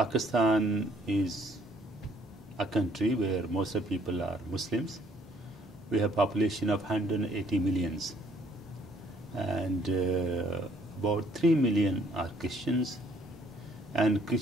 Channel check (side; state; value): both; normal; correlation 0.63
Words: is a country where most of the people are Muslims. We have a population of 180 millions, and about 3 million are Christians. And